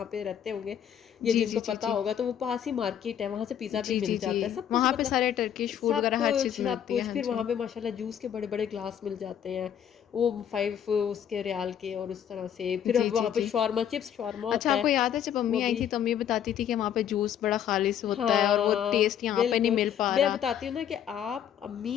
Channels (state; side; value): quieter; right; 9.4 dB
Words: پہ رہتے ہوں گے یا جی جن جی کو جی پتا جی ہوگا, تو وہ پاس ہی مارکیٹ ہے, وہاں سے پیزا بھی جی مل جی جی. جاتا ہے. سب کچھ وہاں پہ مطلب سارے ٹرکش فوڈ سب وغیرہ ہر چیز کچھ سب ملتی ہے. کچھ. ہاں پھر جی. وہاں پہ ماشاءاللہ جوس کے بڑے بڑے گلاس مل جاتے ہیں, وہ 5 اس کے ریال کے, اور اس طرح سے. پھر جی اب جی وہاں پہ جی. شاورما, چپس شاورما اچھا, ہوتا آپ ہے کو یاد ہے جب وہ امی آئی بھی. تھی تو امی یہ بتاتی تھی کہ وہاں پہ جوس بڑا خالص ہوتا ہے, اور وہ ہاں ٹیسٹ یہاں پہ نہیں بالکل, مل پا میں رہا. بتاتی ہوں نا کہ آپ